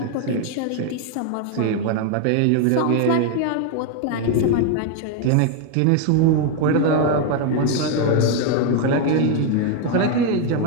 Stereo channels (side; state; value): both; different; correlation 0.01